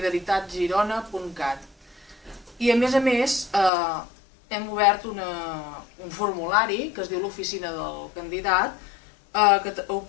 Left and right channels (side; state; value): right; drops out; at 3.7 s